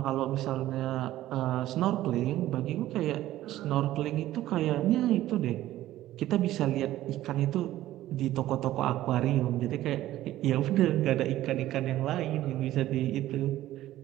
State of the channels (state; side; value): quieter; left; 14.5 dB